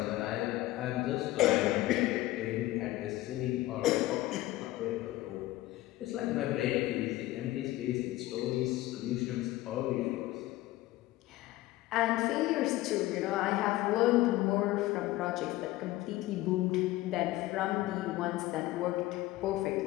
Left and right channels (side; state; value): right; quieter; 17.1 dB